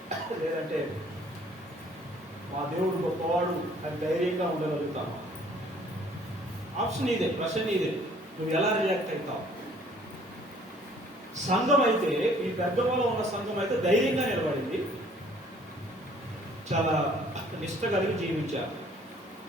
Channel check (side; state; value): both; normal; correlation 0.57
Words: లేదంటే మా దేవుడు గొప్పవాడు అని ధైర్యంగా ఉండగలుగుతామా? ఆప్షన్ ఇదే, ప్రశ్న ఇదే. నువ్వు ఎలా రియాక్ట్ అవుతావు? సంఘం అయితే, ఈ పెద్దమలో ఉన్న సంఘం అయితే ధైర్యంగా నిలబడింది, చాలా నిష్ట కలిగి జీవించారు.